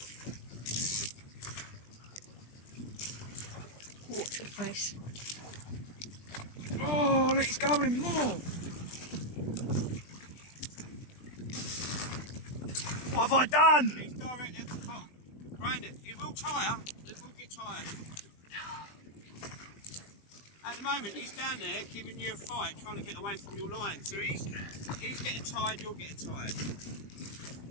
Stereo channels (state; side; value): late; right; 20 ms